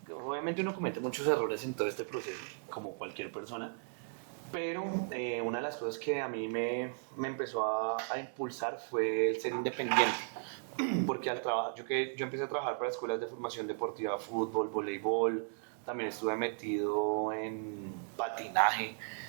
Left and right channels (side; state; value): left; silent; digital silence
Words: obviamente uno comete muchos errores en todo este proceso, como cualquier persona, pero una de las cosas que a mí me empezó a impulsar fue el ser independiente. Porque al trabajar, yo empecé a trabajar para escuelas de formación deportiva, fútbol, voleibol, también estuve metido en patinaje,